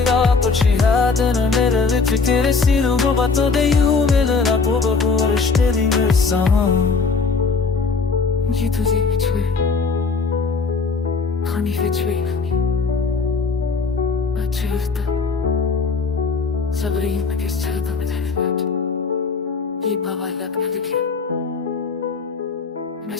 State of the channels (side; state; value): right; quieter; 4.6 dB